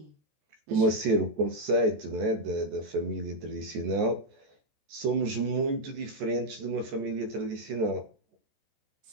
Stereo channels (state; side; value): late; left; 14 ms